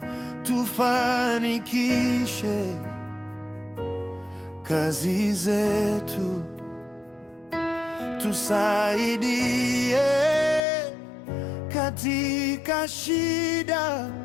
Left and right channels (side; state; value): right; drops out; at 10.6 s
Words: tufanikishe kazi zetu, tusaidie katika shida